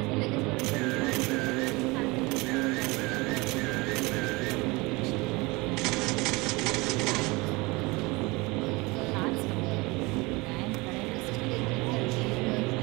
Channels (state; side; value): quieter; left; 24.3 dB